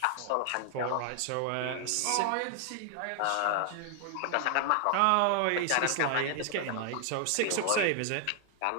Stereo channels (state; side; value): different; both; correlation 0.00